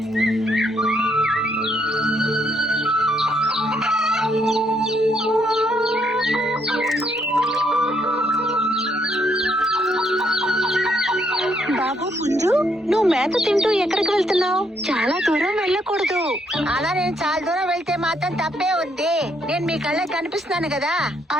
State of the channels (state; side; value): normal; both; correlation 0.73